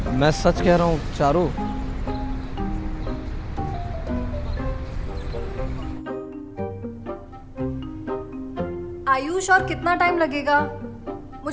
मैं सच कह रहा हूँ चारू। आयुष, और कितना टाइम लगेगा?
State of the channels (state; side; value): identical; both; correlation 1.00